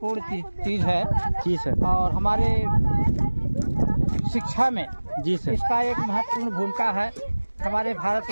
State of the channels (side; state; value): both; inverted; correlation -1.00